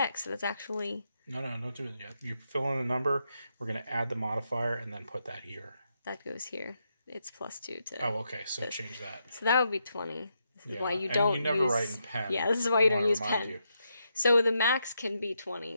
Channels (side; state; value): both; inverted; correlation -0.81